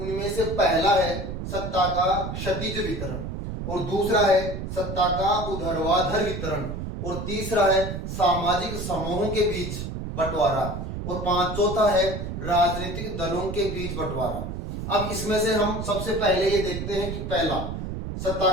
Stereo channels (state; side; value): noise; right; rumble, 6 dB below the sound